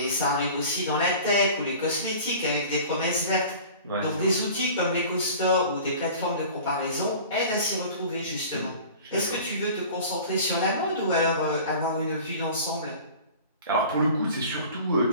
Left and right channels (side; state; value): both; inverted; correlation -0.41